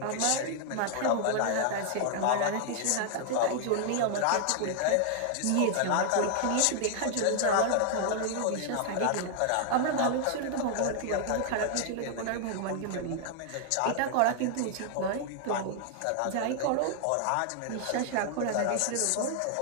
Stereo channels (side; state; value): both; different; correlation 0.00